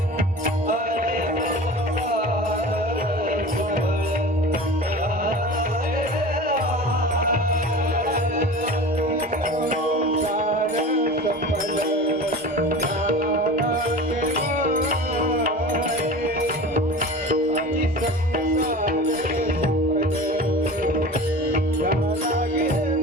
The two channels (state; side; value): normal; both; correlation 0.35